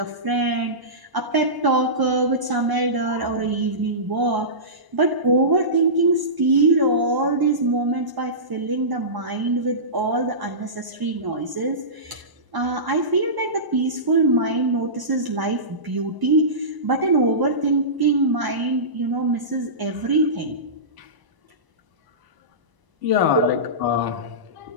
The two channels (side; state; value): left; late; 1.0 ms